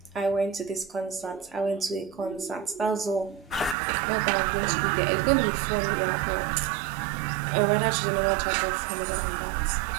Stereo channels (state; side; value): drops out; left; at 3.8 s